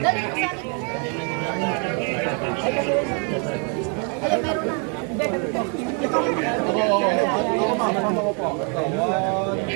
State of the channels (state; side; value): quieter; left; 38.2 dB